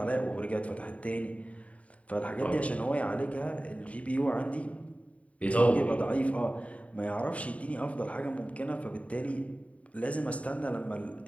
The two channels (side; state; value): right; late; 0.066 ms